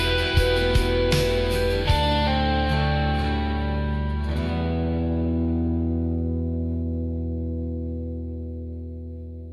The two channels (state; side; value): identical; both; correlation 1.00